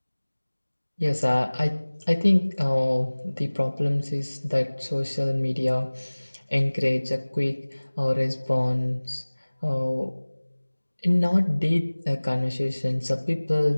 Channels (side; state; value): both; inverted; correlation -1.00